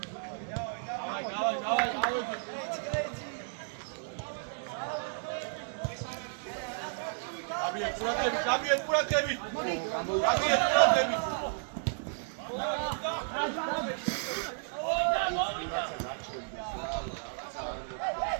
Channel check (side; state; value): left; silent; digital silence